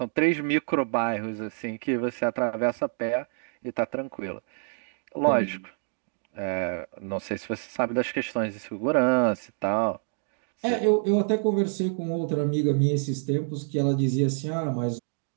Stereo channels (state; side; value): silent; left; digital silence